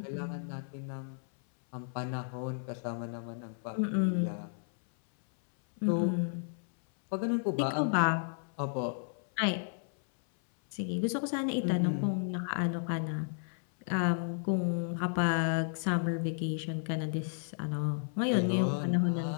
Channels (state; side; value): silent; right; 56 dB below the other